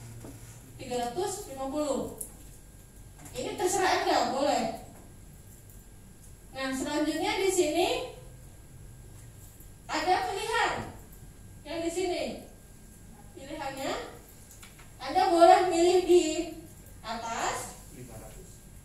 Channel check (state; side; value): identical; both; correlation 1.00